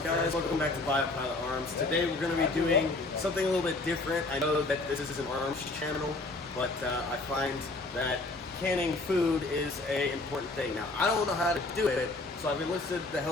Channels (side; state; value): right; quieter; 3.1 dB